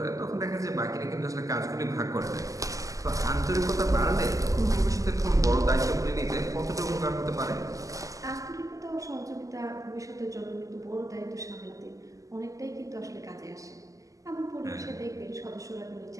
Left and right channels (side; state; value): left; late; 0.16 ms